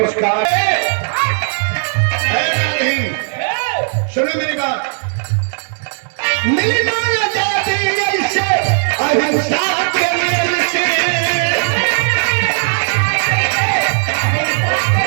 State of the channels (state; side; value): silent; left; digital silence